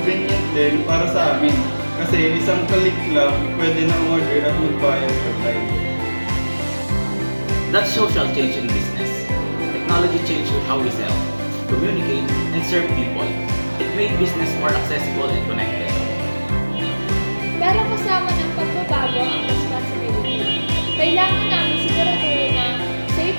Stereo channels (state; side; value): inverted; both; correlation -1.00